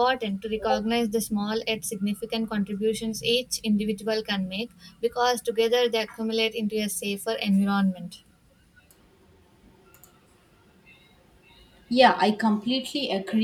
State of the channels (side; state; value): both; identical; correlation 1.00